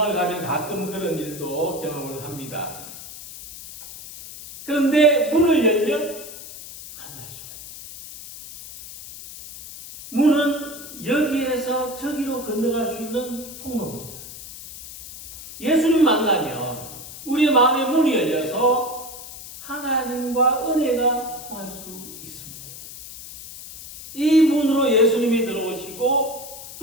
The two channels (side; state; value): left; noise; hiss, 13 dB below the sound